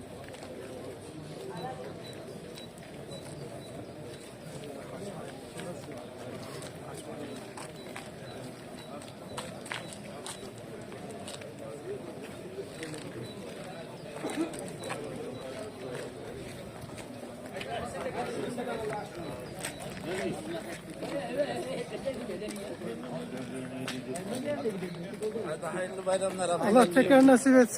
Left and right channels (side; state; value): both; identical; correlation 1.00